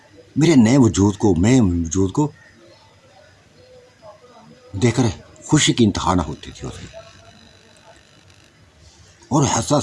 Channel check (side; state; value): both; identical; correlation 1.00